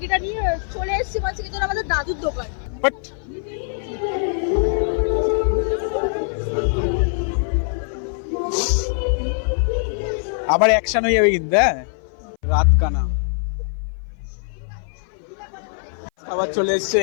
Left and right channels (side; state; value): right; silent; 56 dB below the other